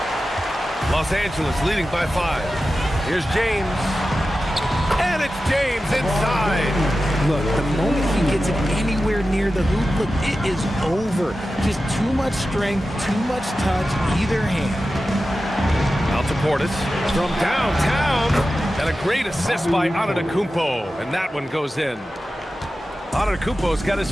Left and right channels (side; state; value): both; normal; correlation 0.93